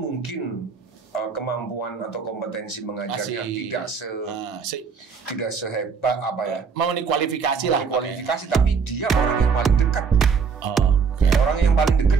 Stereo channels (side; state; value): left; quieter; 5.7 dB